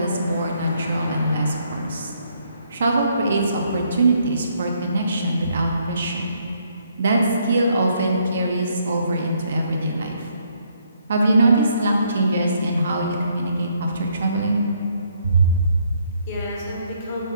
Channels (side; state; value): both; inverted; correlation -0.70